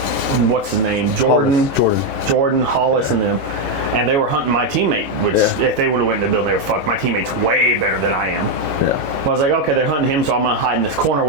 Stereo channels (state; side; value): late; left; 21 ms